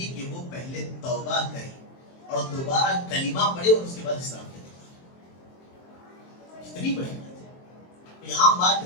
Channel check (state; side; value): late; right; 23 ms